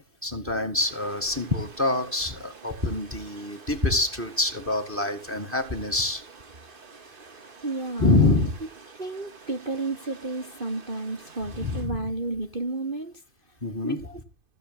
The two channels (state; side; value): late; left; 2.5 ms